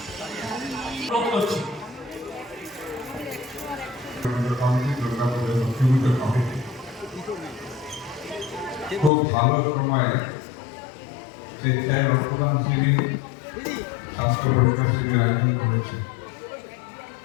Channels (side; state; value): right; drops out; at 9.1 s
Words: খুব ভালো সময়ে স্বেচ্ছায় রক্তদান শিবির, স্বাস্থ্য পরীক্ষা শিবির আয়োজন করেছে।